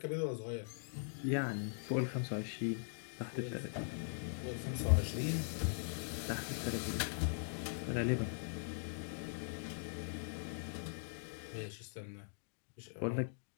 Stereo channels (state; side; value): silent; right; digital silence